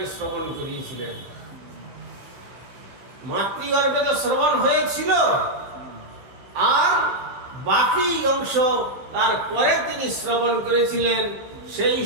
শ্রবণ করিয়েছিলেন। মাতৃগর্ভে তো শ্রবণ হয়েছিল, আর বাকি অংশ তারপরে তিনি শ্রবণ করেছিলেন। সেই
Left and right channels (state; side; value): late; left; 15 ms